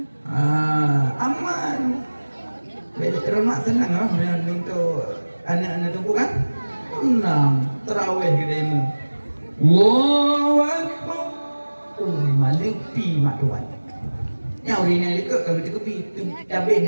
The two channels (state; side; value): inverted; both; correlation -1.00